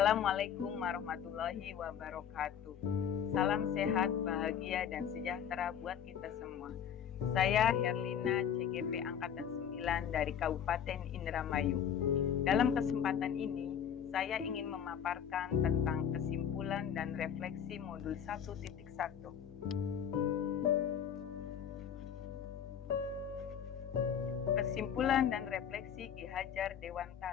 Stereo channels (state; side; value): quieter; right; 8.6 dB